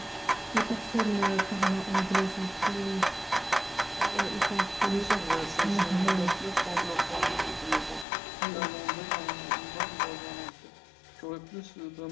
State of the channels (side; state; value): right; drops out; at 8.1 s